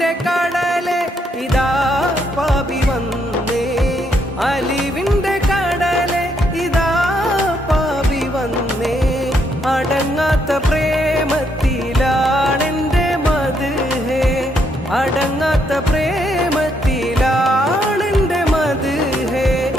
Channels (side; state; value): both; normal; correlation 0.75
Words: കടലെ ഇതാ പാപി വന്നേ അലിവിന്റെ കടലെ ഇതാ പാപി വന്നേ അടങ്ങാത്ത പ്രേമത്തിലാണെന്റെ മദ്ഹ് അടങ്ങാത്ത പ്രേമത്തിലാണെന്റെ മദ്ഹ്